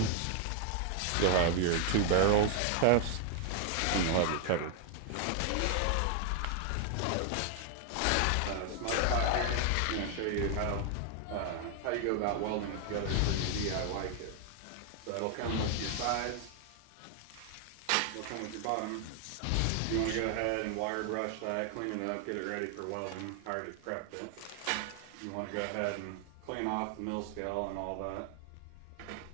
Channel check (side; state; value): both; different; correlation 0.00